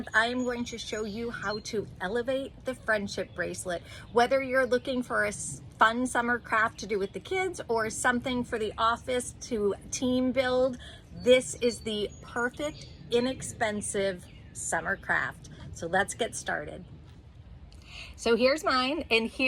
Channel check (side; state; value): both; identical; correlation 1.00